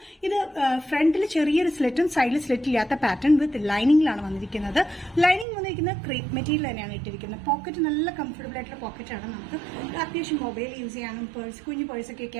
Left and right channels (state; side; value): drops out; left; at 5.5 s